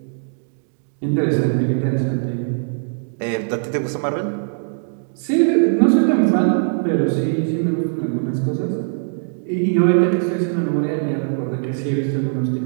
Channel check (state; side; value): silent; left; digital silence